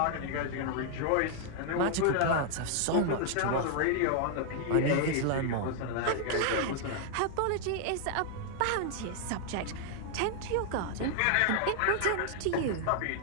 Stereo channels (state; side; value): different; both; correlation 0.00